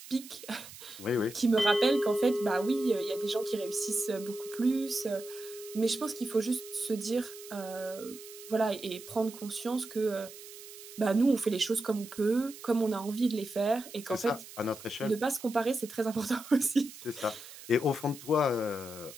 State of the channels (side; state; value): right; noise; hiss, 16 dB below the sound